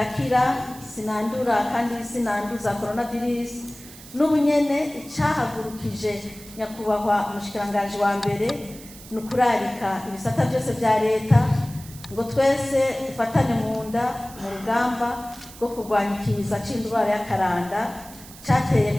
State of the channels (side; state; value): right; noise; hiss, 18 dB below the sound